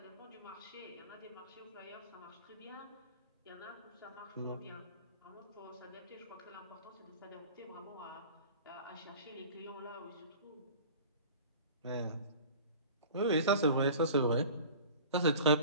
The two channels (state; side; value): inverted; both; correlation -0.40